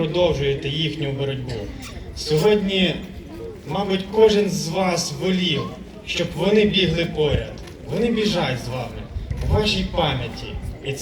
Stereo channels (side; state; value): both; identical; correlation 1.00